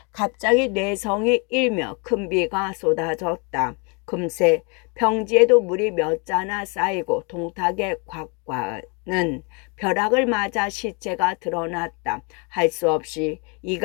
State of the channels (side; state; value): right; quieter; 32.7 dB